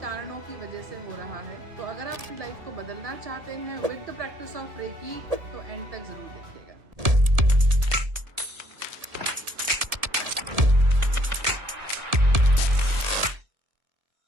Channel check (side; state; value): left; late; 1.7 ms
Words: कारणों की वजह से हो रहा है। तो अगर आप अपनी लाइफ को बदलना चाहते हैं with the practice of reiki, तो एंड तक ज़रूर देखिएगा।